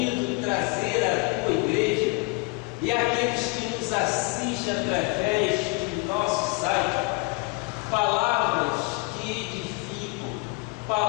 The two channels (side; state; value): right; quieter; 29.8 dB